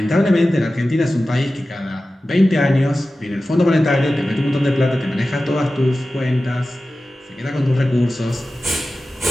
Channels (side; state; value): both; normal; correlation 0.95